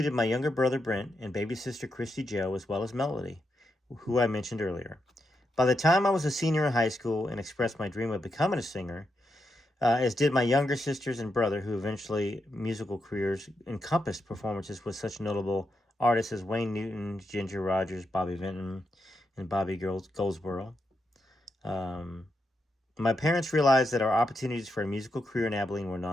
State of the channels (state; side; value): normal; both; correlation 0.84